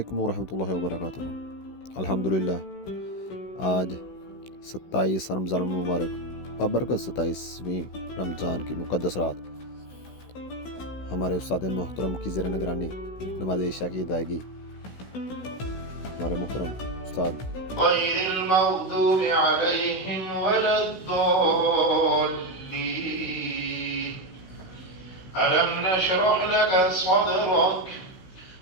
ورحمۃ اللہ وبرکاتہ۔ الحمدللہ آج 27 رمضان المبارک بابرکت 27ویں رمضان کی مقدس رات ہمارے استاد محترم کی زیر نگرانی نماز عشاء کی ادائیگی ہمارے محترم استاد غیر المغضوب علیہم ولا الضالین ألم نشرح لك صدرك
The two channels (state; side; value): late; right; 16 ms